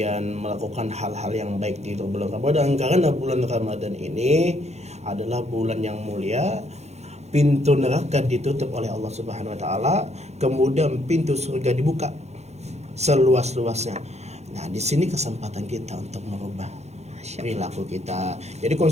melakukan hal-hal yang baik di bulan Ramadan karena bulan Ramadan ini adalah bulan yang mulia. Pintu neraka ditutup oleh Allah Subhanahu wa taala, kemudian pintu surga dibuka seluas-luasnya. Nah, di sini kesempatan kita untuk merubah perilaku kita. Jadi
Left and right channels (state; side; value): late; left; 0.32 ms